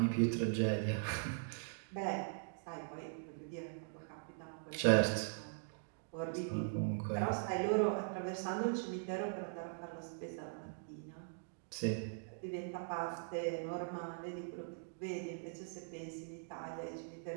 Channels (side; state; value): left; silent; digital silence